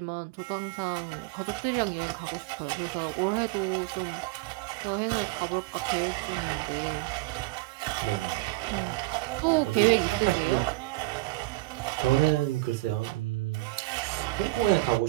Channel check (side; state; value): left; quieter; 20.3 dB